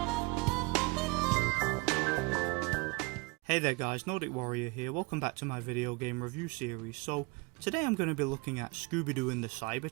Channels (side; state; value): left; quieter; 27.3 dB